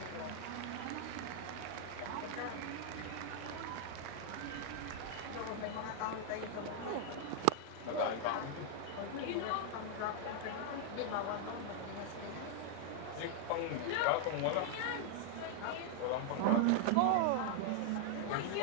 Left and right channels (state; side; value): different; both; correlation 0.00